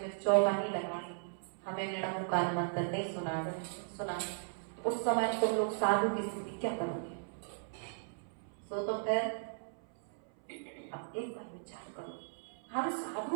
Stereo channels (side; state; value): left; silent; 53 dB below the other